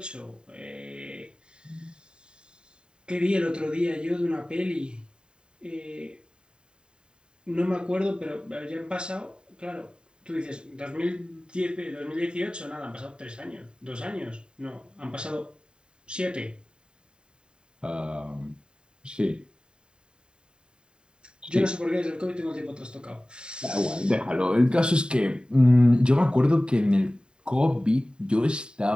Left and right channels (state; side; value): late; left; 0.049 ms